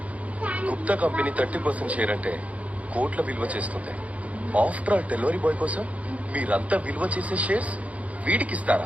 గుప్తా కంపెనీ 30% షేర్ అంటే కోట్ల విలువ చేస్తుంది. ఆఫ్టర్ ఆల్ డెలివరీ బాయ్ కోసం మీరంతా విలువ చేసే షేర్స్ వీడికి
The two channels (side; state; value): left; late; 0.066 ms